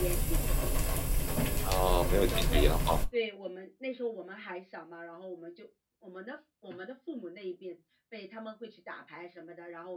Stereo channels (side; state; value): both; identical; correlation 1.00